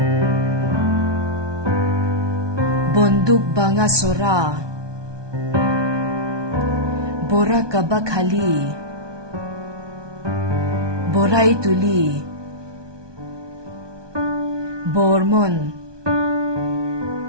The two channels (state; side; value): late; left; 1.2 ms